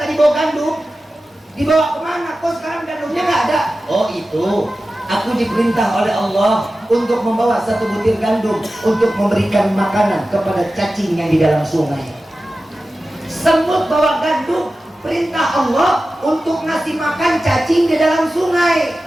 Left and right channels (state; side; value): normal; both; correlation 0.94